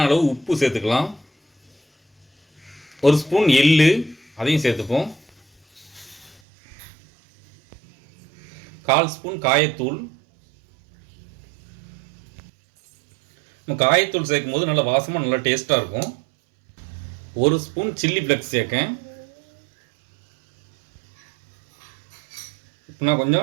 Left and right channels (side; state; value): left; drops out; at 6.4 s